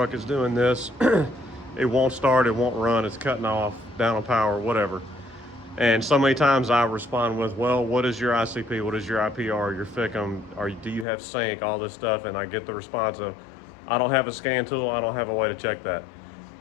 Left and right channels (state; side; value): drops out; right; at 11.1 s